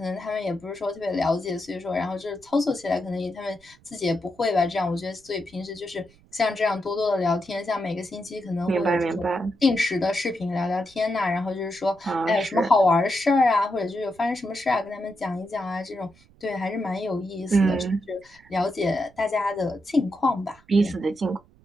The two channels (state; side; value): noise; right; rumble, 28 dB below the sound